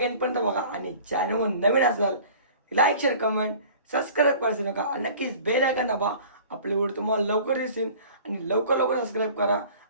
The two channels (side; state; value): both; inverted; correlation -0.46